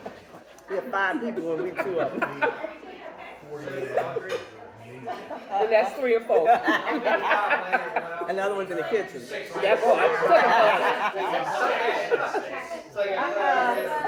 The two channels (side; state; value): both; identical; correlation 1.00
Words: We have 5 people and we 2 of them. And that's 3 or 4. Another one's in the kitchen. That's what